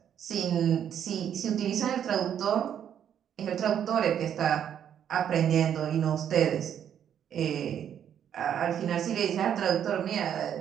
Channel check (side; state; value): left; quieter; 9.3 dB